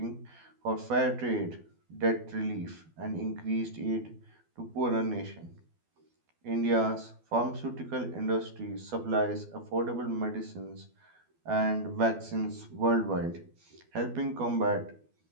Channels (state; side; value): late; left; 12 ms